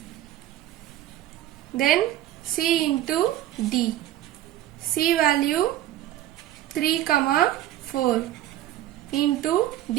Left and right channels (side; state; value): left; quieter; 13.3 dB